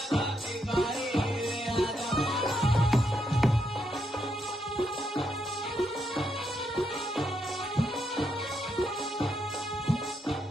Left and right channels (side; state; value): both; normal; correlation 0.79